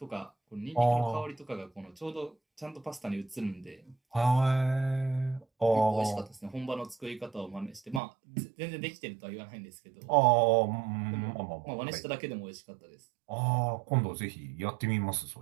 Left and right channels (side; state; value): left; drops out; at 8.0 s